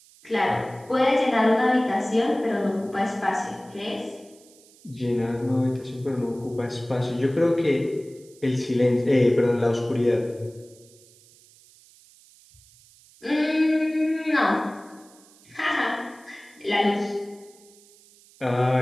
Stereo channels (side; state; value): right; noise; hiss, 27 dB below the sound